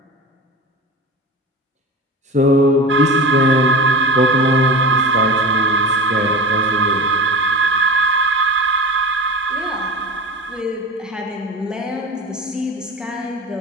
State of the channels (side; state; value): both; normal; correlation 0.30